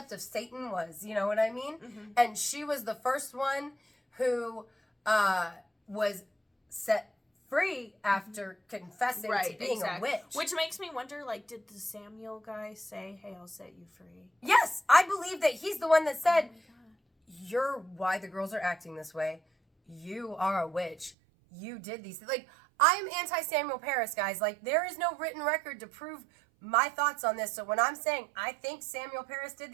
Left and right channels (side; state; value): left; drops out; at 21.2 s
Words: of Satan was, you know what I mean? Mm-hmm. And she was the first one who was set free after confessing to being a witch. Which makes me wonder, like, did the Samuel guy say, "Hey, I'll set you free"? Yes, I believe that he's the one that said, "You're why the girls are acting this way. You are a witch. You did these things." Like, I'm anti-Samuel Paris, guys. Like, there is no written record to prove my thoughts on this. So when I'm saying I think Samuel Paris did